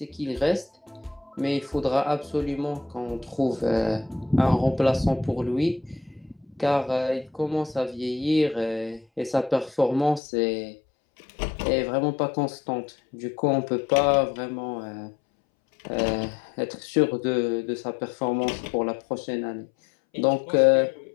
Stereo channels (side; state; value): right; drops out; at 10.2 s